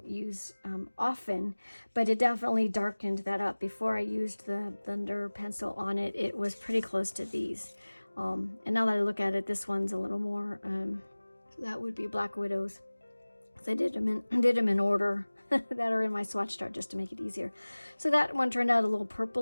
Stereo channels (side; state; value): both; inverted; correlation -1.00